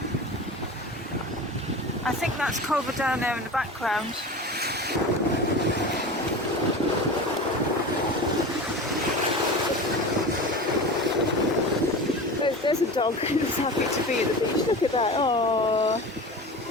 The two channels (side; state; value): both; normal; correlation 0.31